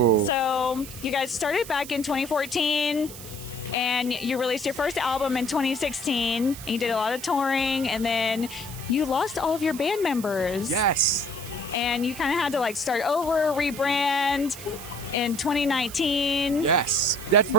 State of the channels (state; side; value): noise; right; hiss, 13 dB below the sound